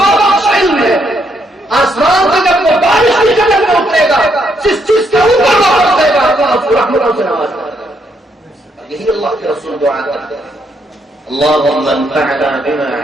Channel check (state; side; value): normal; both; correlation 0.75